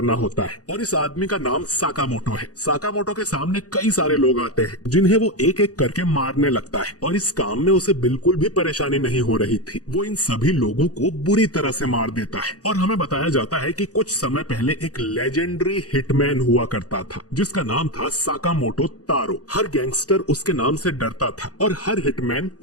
होता है, और इस आदमी का नाम साकामोटो है। साकामोटो के सामने कई सारे लोग आते हैं जिन्हें वो एक एक करके मारने लगता है, और इस काम में उसे बिल्कुल भी परेशानी नहीं हो रही थी। वो इन सभी लोगों को बुरी तरह से मार देता है, और हमें बताया जाता है कि कुछ समय पहले एक लेजेंडरी हिटमैन हुआ करता था जिसका नाम था साकामोटो तारो। हर गैंगस्टर उसके नाम से डरता था और हर हिटमैन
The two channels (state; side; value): late; right; 0.67 ms